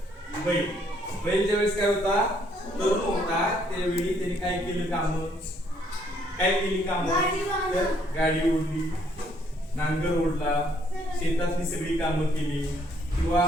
बैल ज्यावेळेस काय होता तरुण होता, त्यावेळी त्याने काय केलं काम, काय केली काम, तर गाडी ओढली, नांगर ओढला, शेतातली सगळी कामं केली, किंवा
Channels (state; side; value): normal; both; correlation 0.67